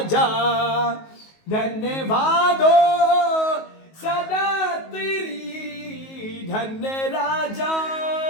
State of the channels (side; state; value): right; late; 19 ms